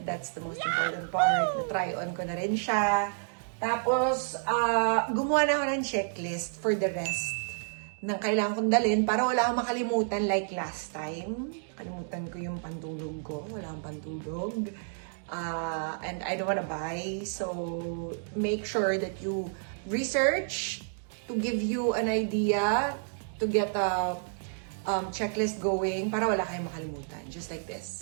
That's the most important part. Na-try on ko na rin siya. Tapos, gumawa na ako ng checklist for the rest ng kailangan kong dalhin para wala akong makalimutan like last time. Kalimutan ko yung pantulog ko. Wala akong pantulog. And I don't wanna buy. So, make sure that you research to give you an idea to get a checklist going para wala kayong makalimutan. Just like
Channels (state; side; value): silent; left; digital silence